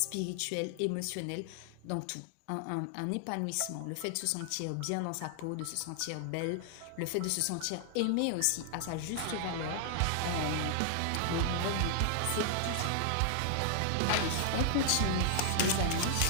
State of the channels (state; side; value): different; both; correlation 0.00